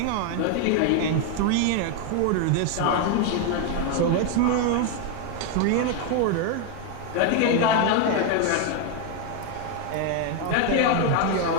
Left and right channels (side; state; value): both; different; correlation 0.01